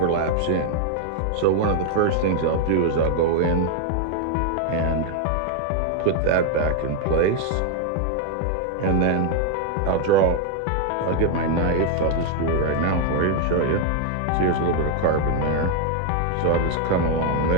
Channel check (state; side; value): different; both; correlation 0.00